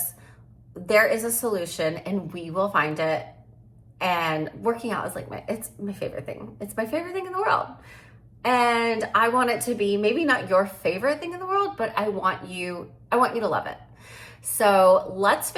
There is a solution and we will find it. And working out is like it's my favorite thing. It's my favorite thing in the world. And I want it to be maybe not your favorite thing in the world, but I want you to love it. So let's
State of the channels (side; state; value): both; identical; correlation 1.00